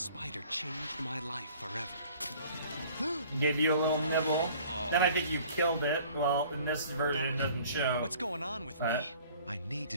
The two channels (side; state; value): both; inverted; correlation -0.51